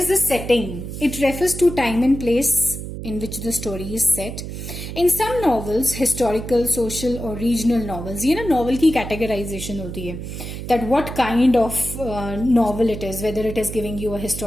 the setting. It refers to time and place in which the story is set. In some novels, historical, social or regional novels, ये ना novel की categorization होती है, that what kind of novel it is, whether it is giving you a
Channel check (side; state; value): right; noise; hum, 8 dB below the sound